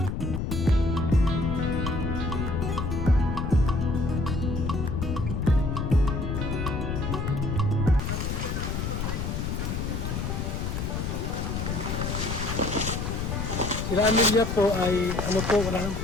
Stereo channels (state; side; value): noise; left; rumble, 2 dB below the sound